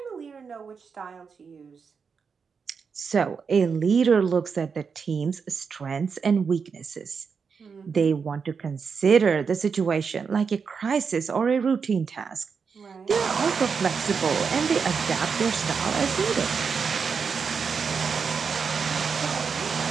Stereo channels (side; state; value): left; quieter; 5.8 dB